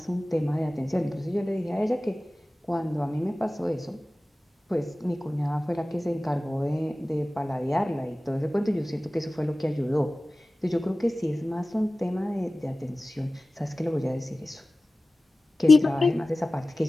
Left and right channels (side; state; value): both; normal; correlation 0.96